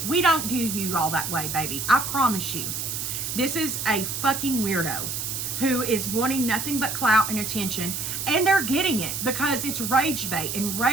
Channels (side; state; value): right; noise; hiss, 4 dB below the sound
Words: We don't view you all that way, baby. I promise you. This is a fucking weirdo who is wanting nothing but clout and attention, and they're getting it because it's rage bait, and